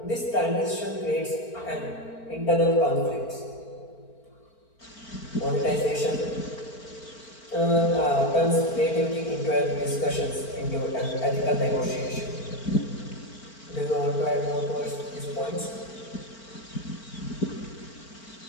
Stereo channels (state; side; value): late; right; 4.4 ms